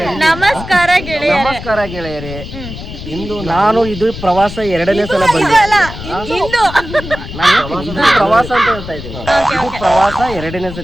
ನಮಸ್ಕಾರ ಗೆಳೆಯರೇ. ನಮಸ್ಕಾರ ಗೆಳೆಯರಿ. ಇಂದು ನಾನು ಇದು ಪ್ರವಾಸ 2ನೇ ಸಲ ಬಂದೆ. ಇದು ಪ್ರವಾಸ ಅಂತ ಹೇಳ್ತಾ ಇದ್ದೀನಿ. ಇದು ಪ್ರವಾಸ 2ನೇ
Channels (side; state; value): left; noise; rumble, 11 dB below the sound